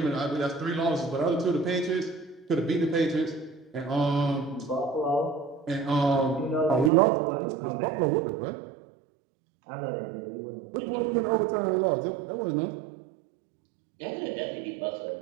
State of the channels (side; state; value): left; drops out; at 6.9 s